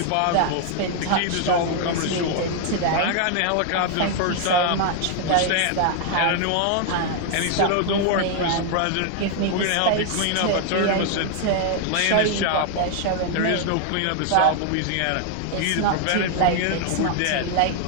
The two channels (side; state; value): both; different; correlation 0.00